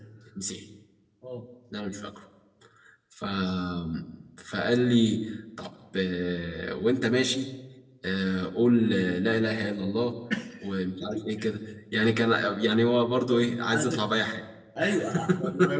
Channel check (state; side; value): identical; both; correlation 1.00